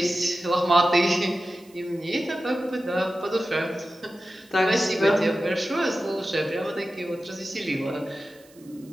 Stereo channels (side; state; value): right; noise; hiss, 27 dB below the sound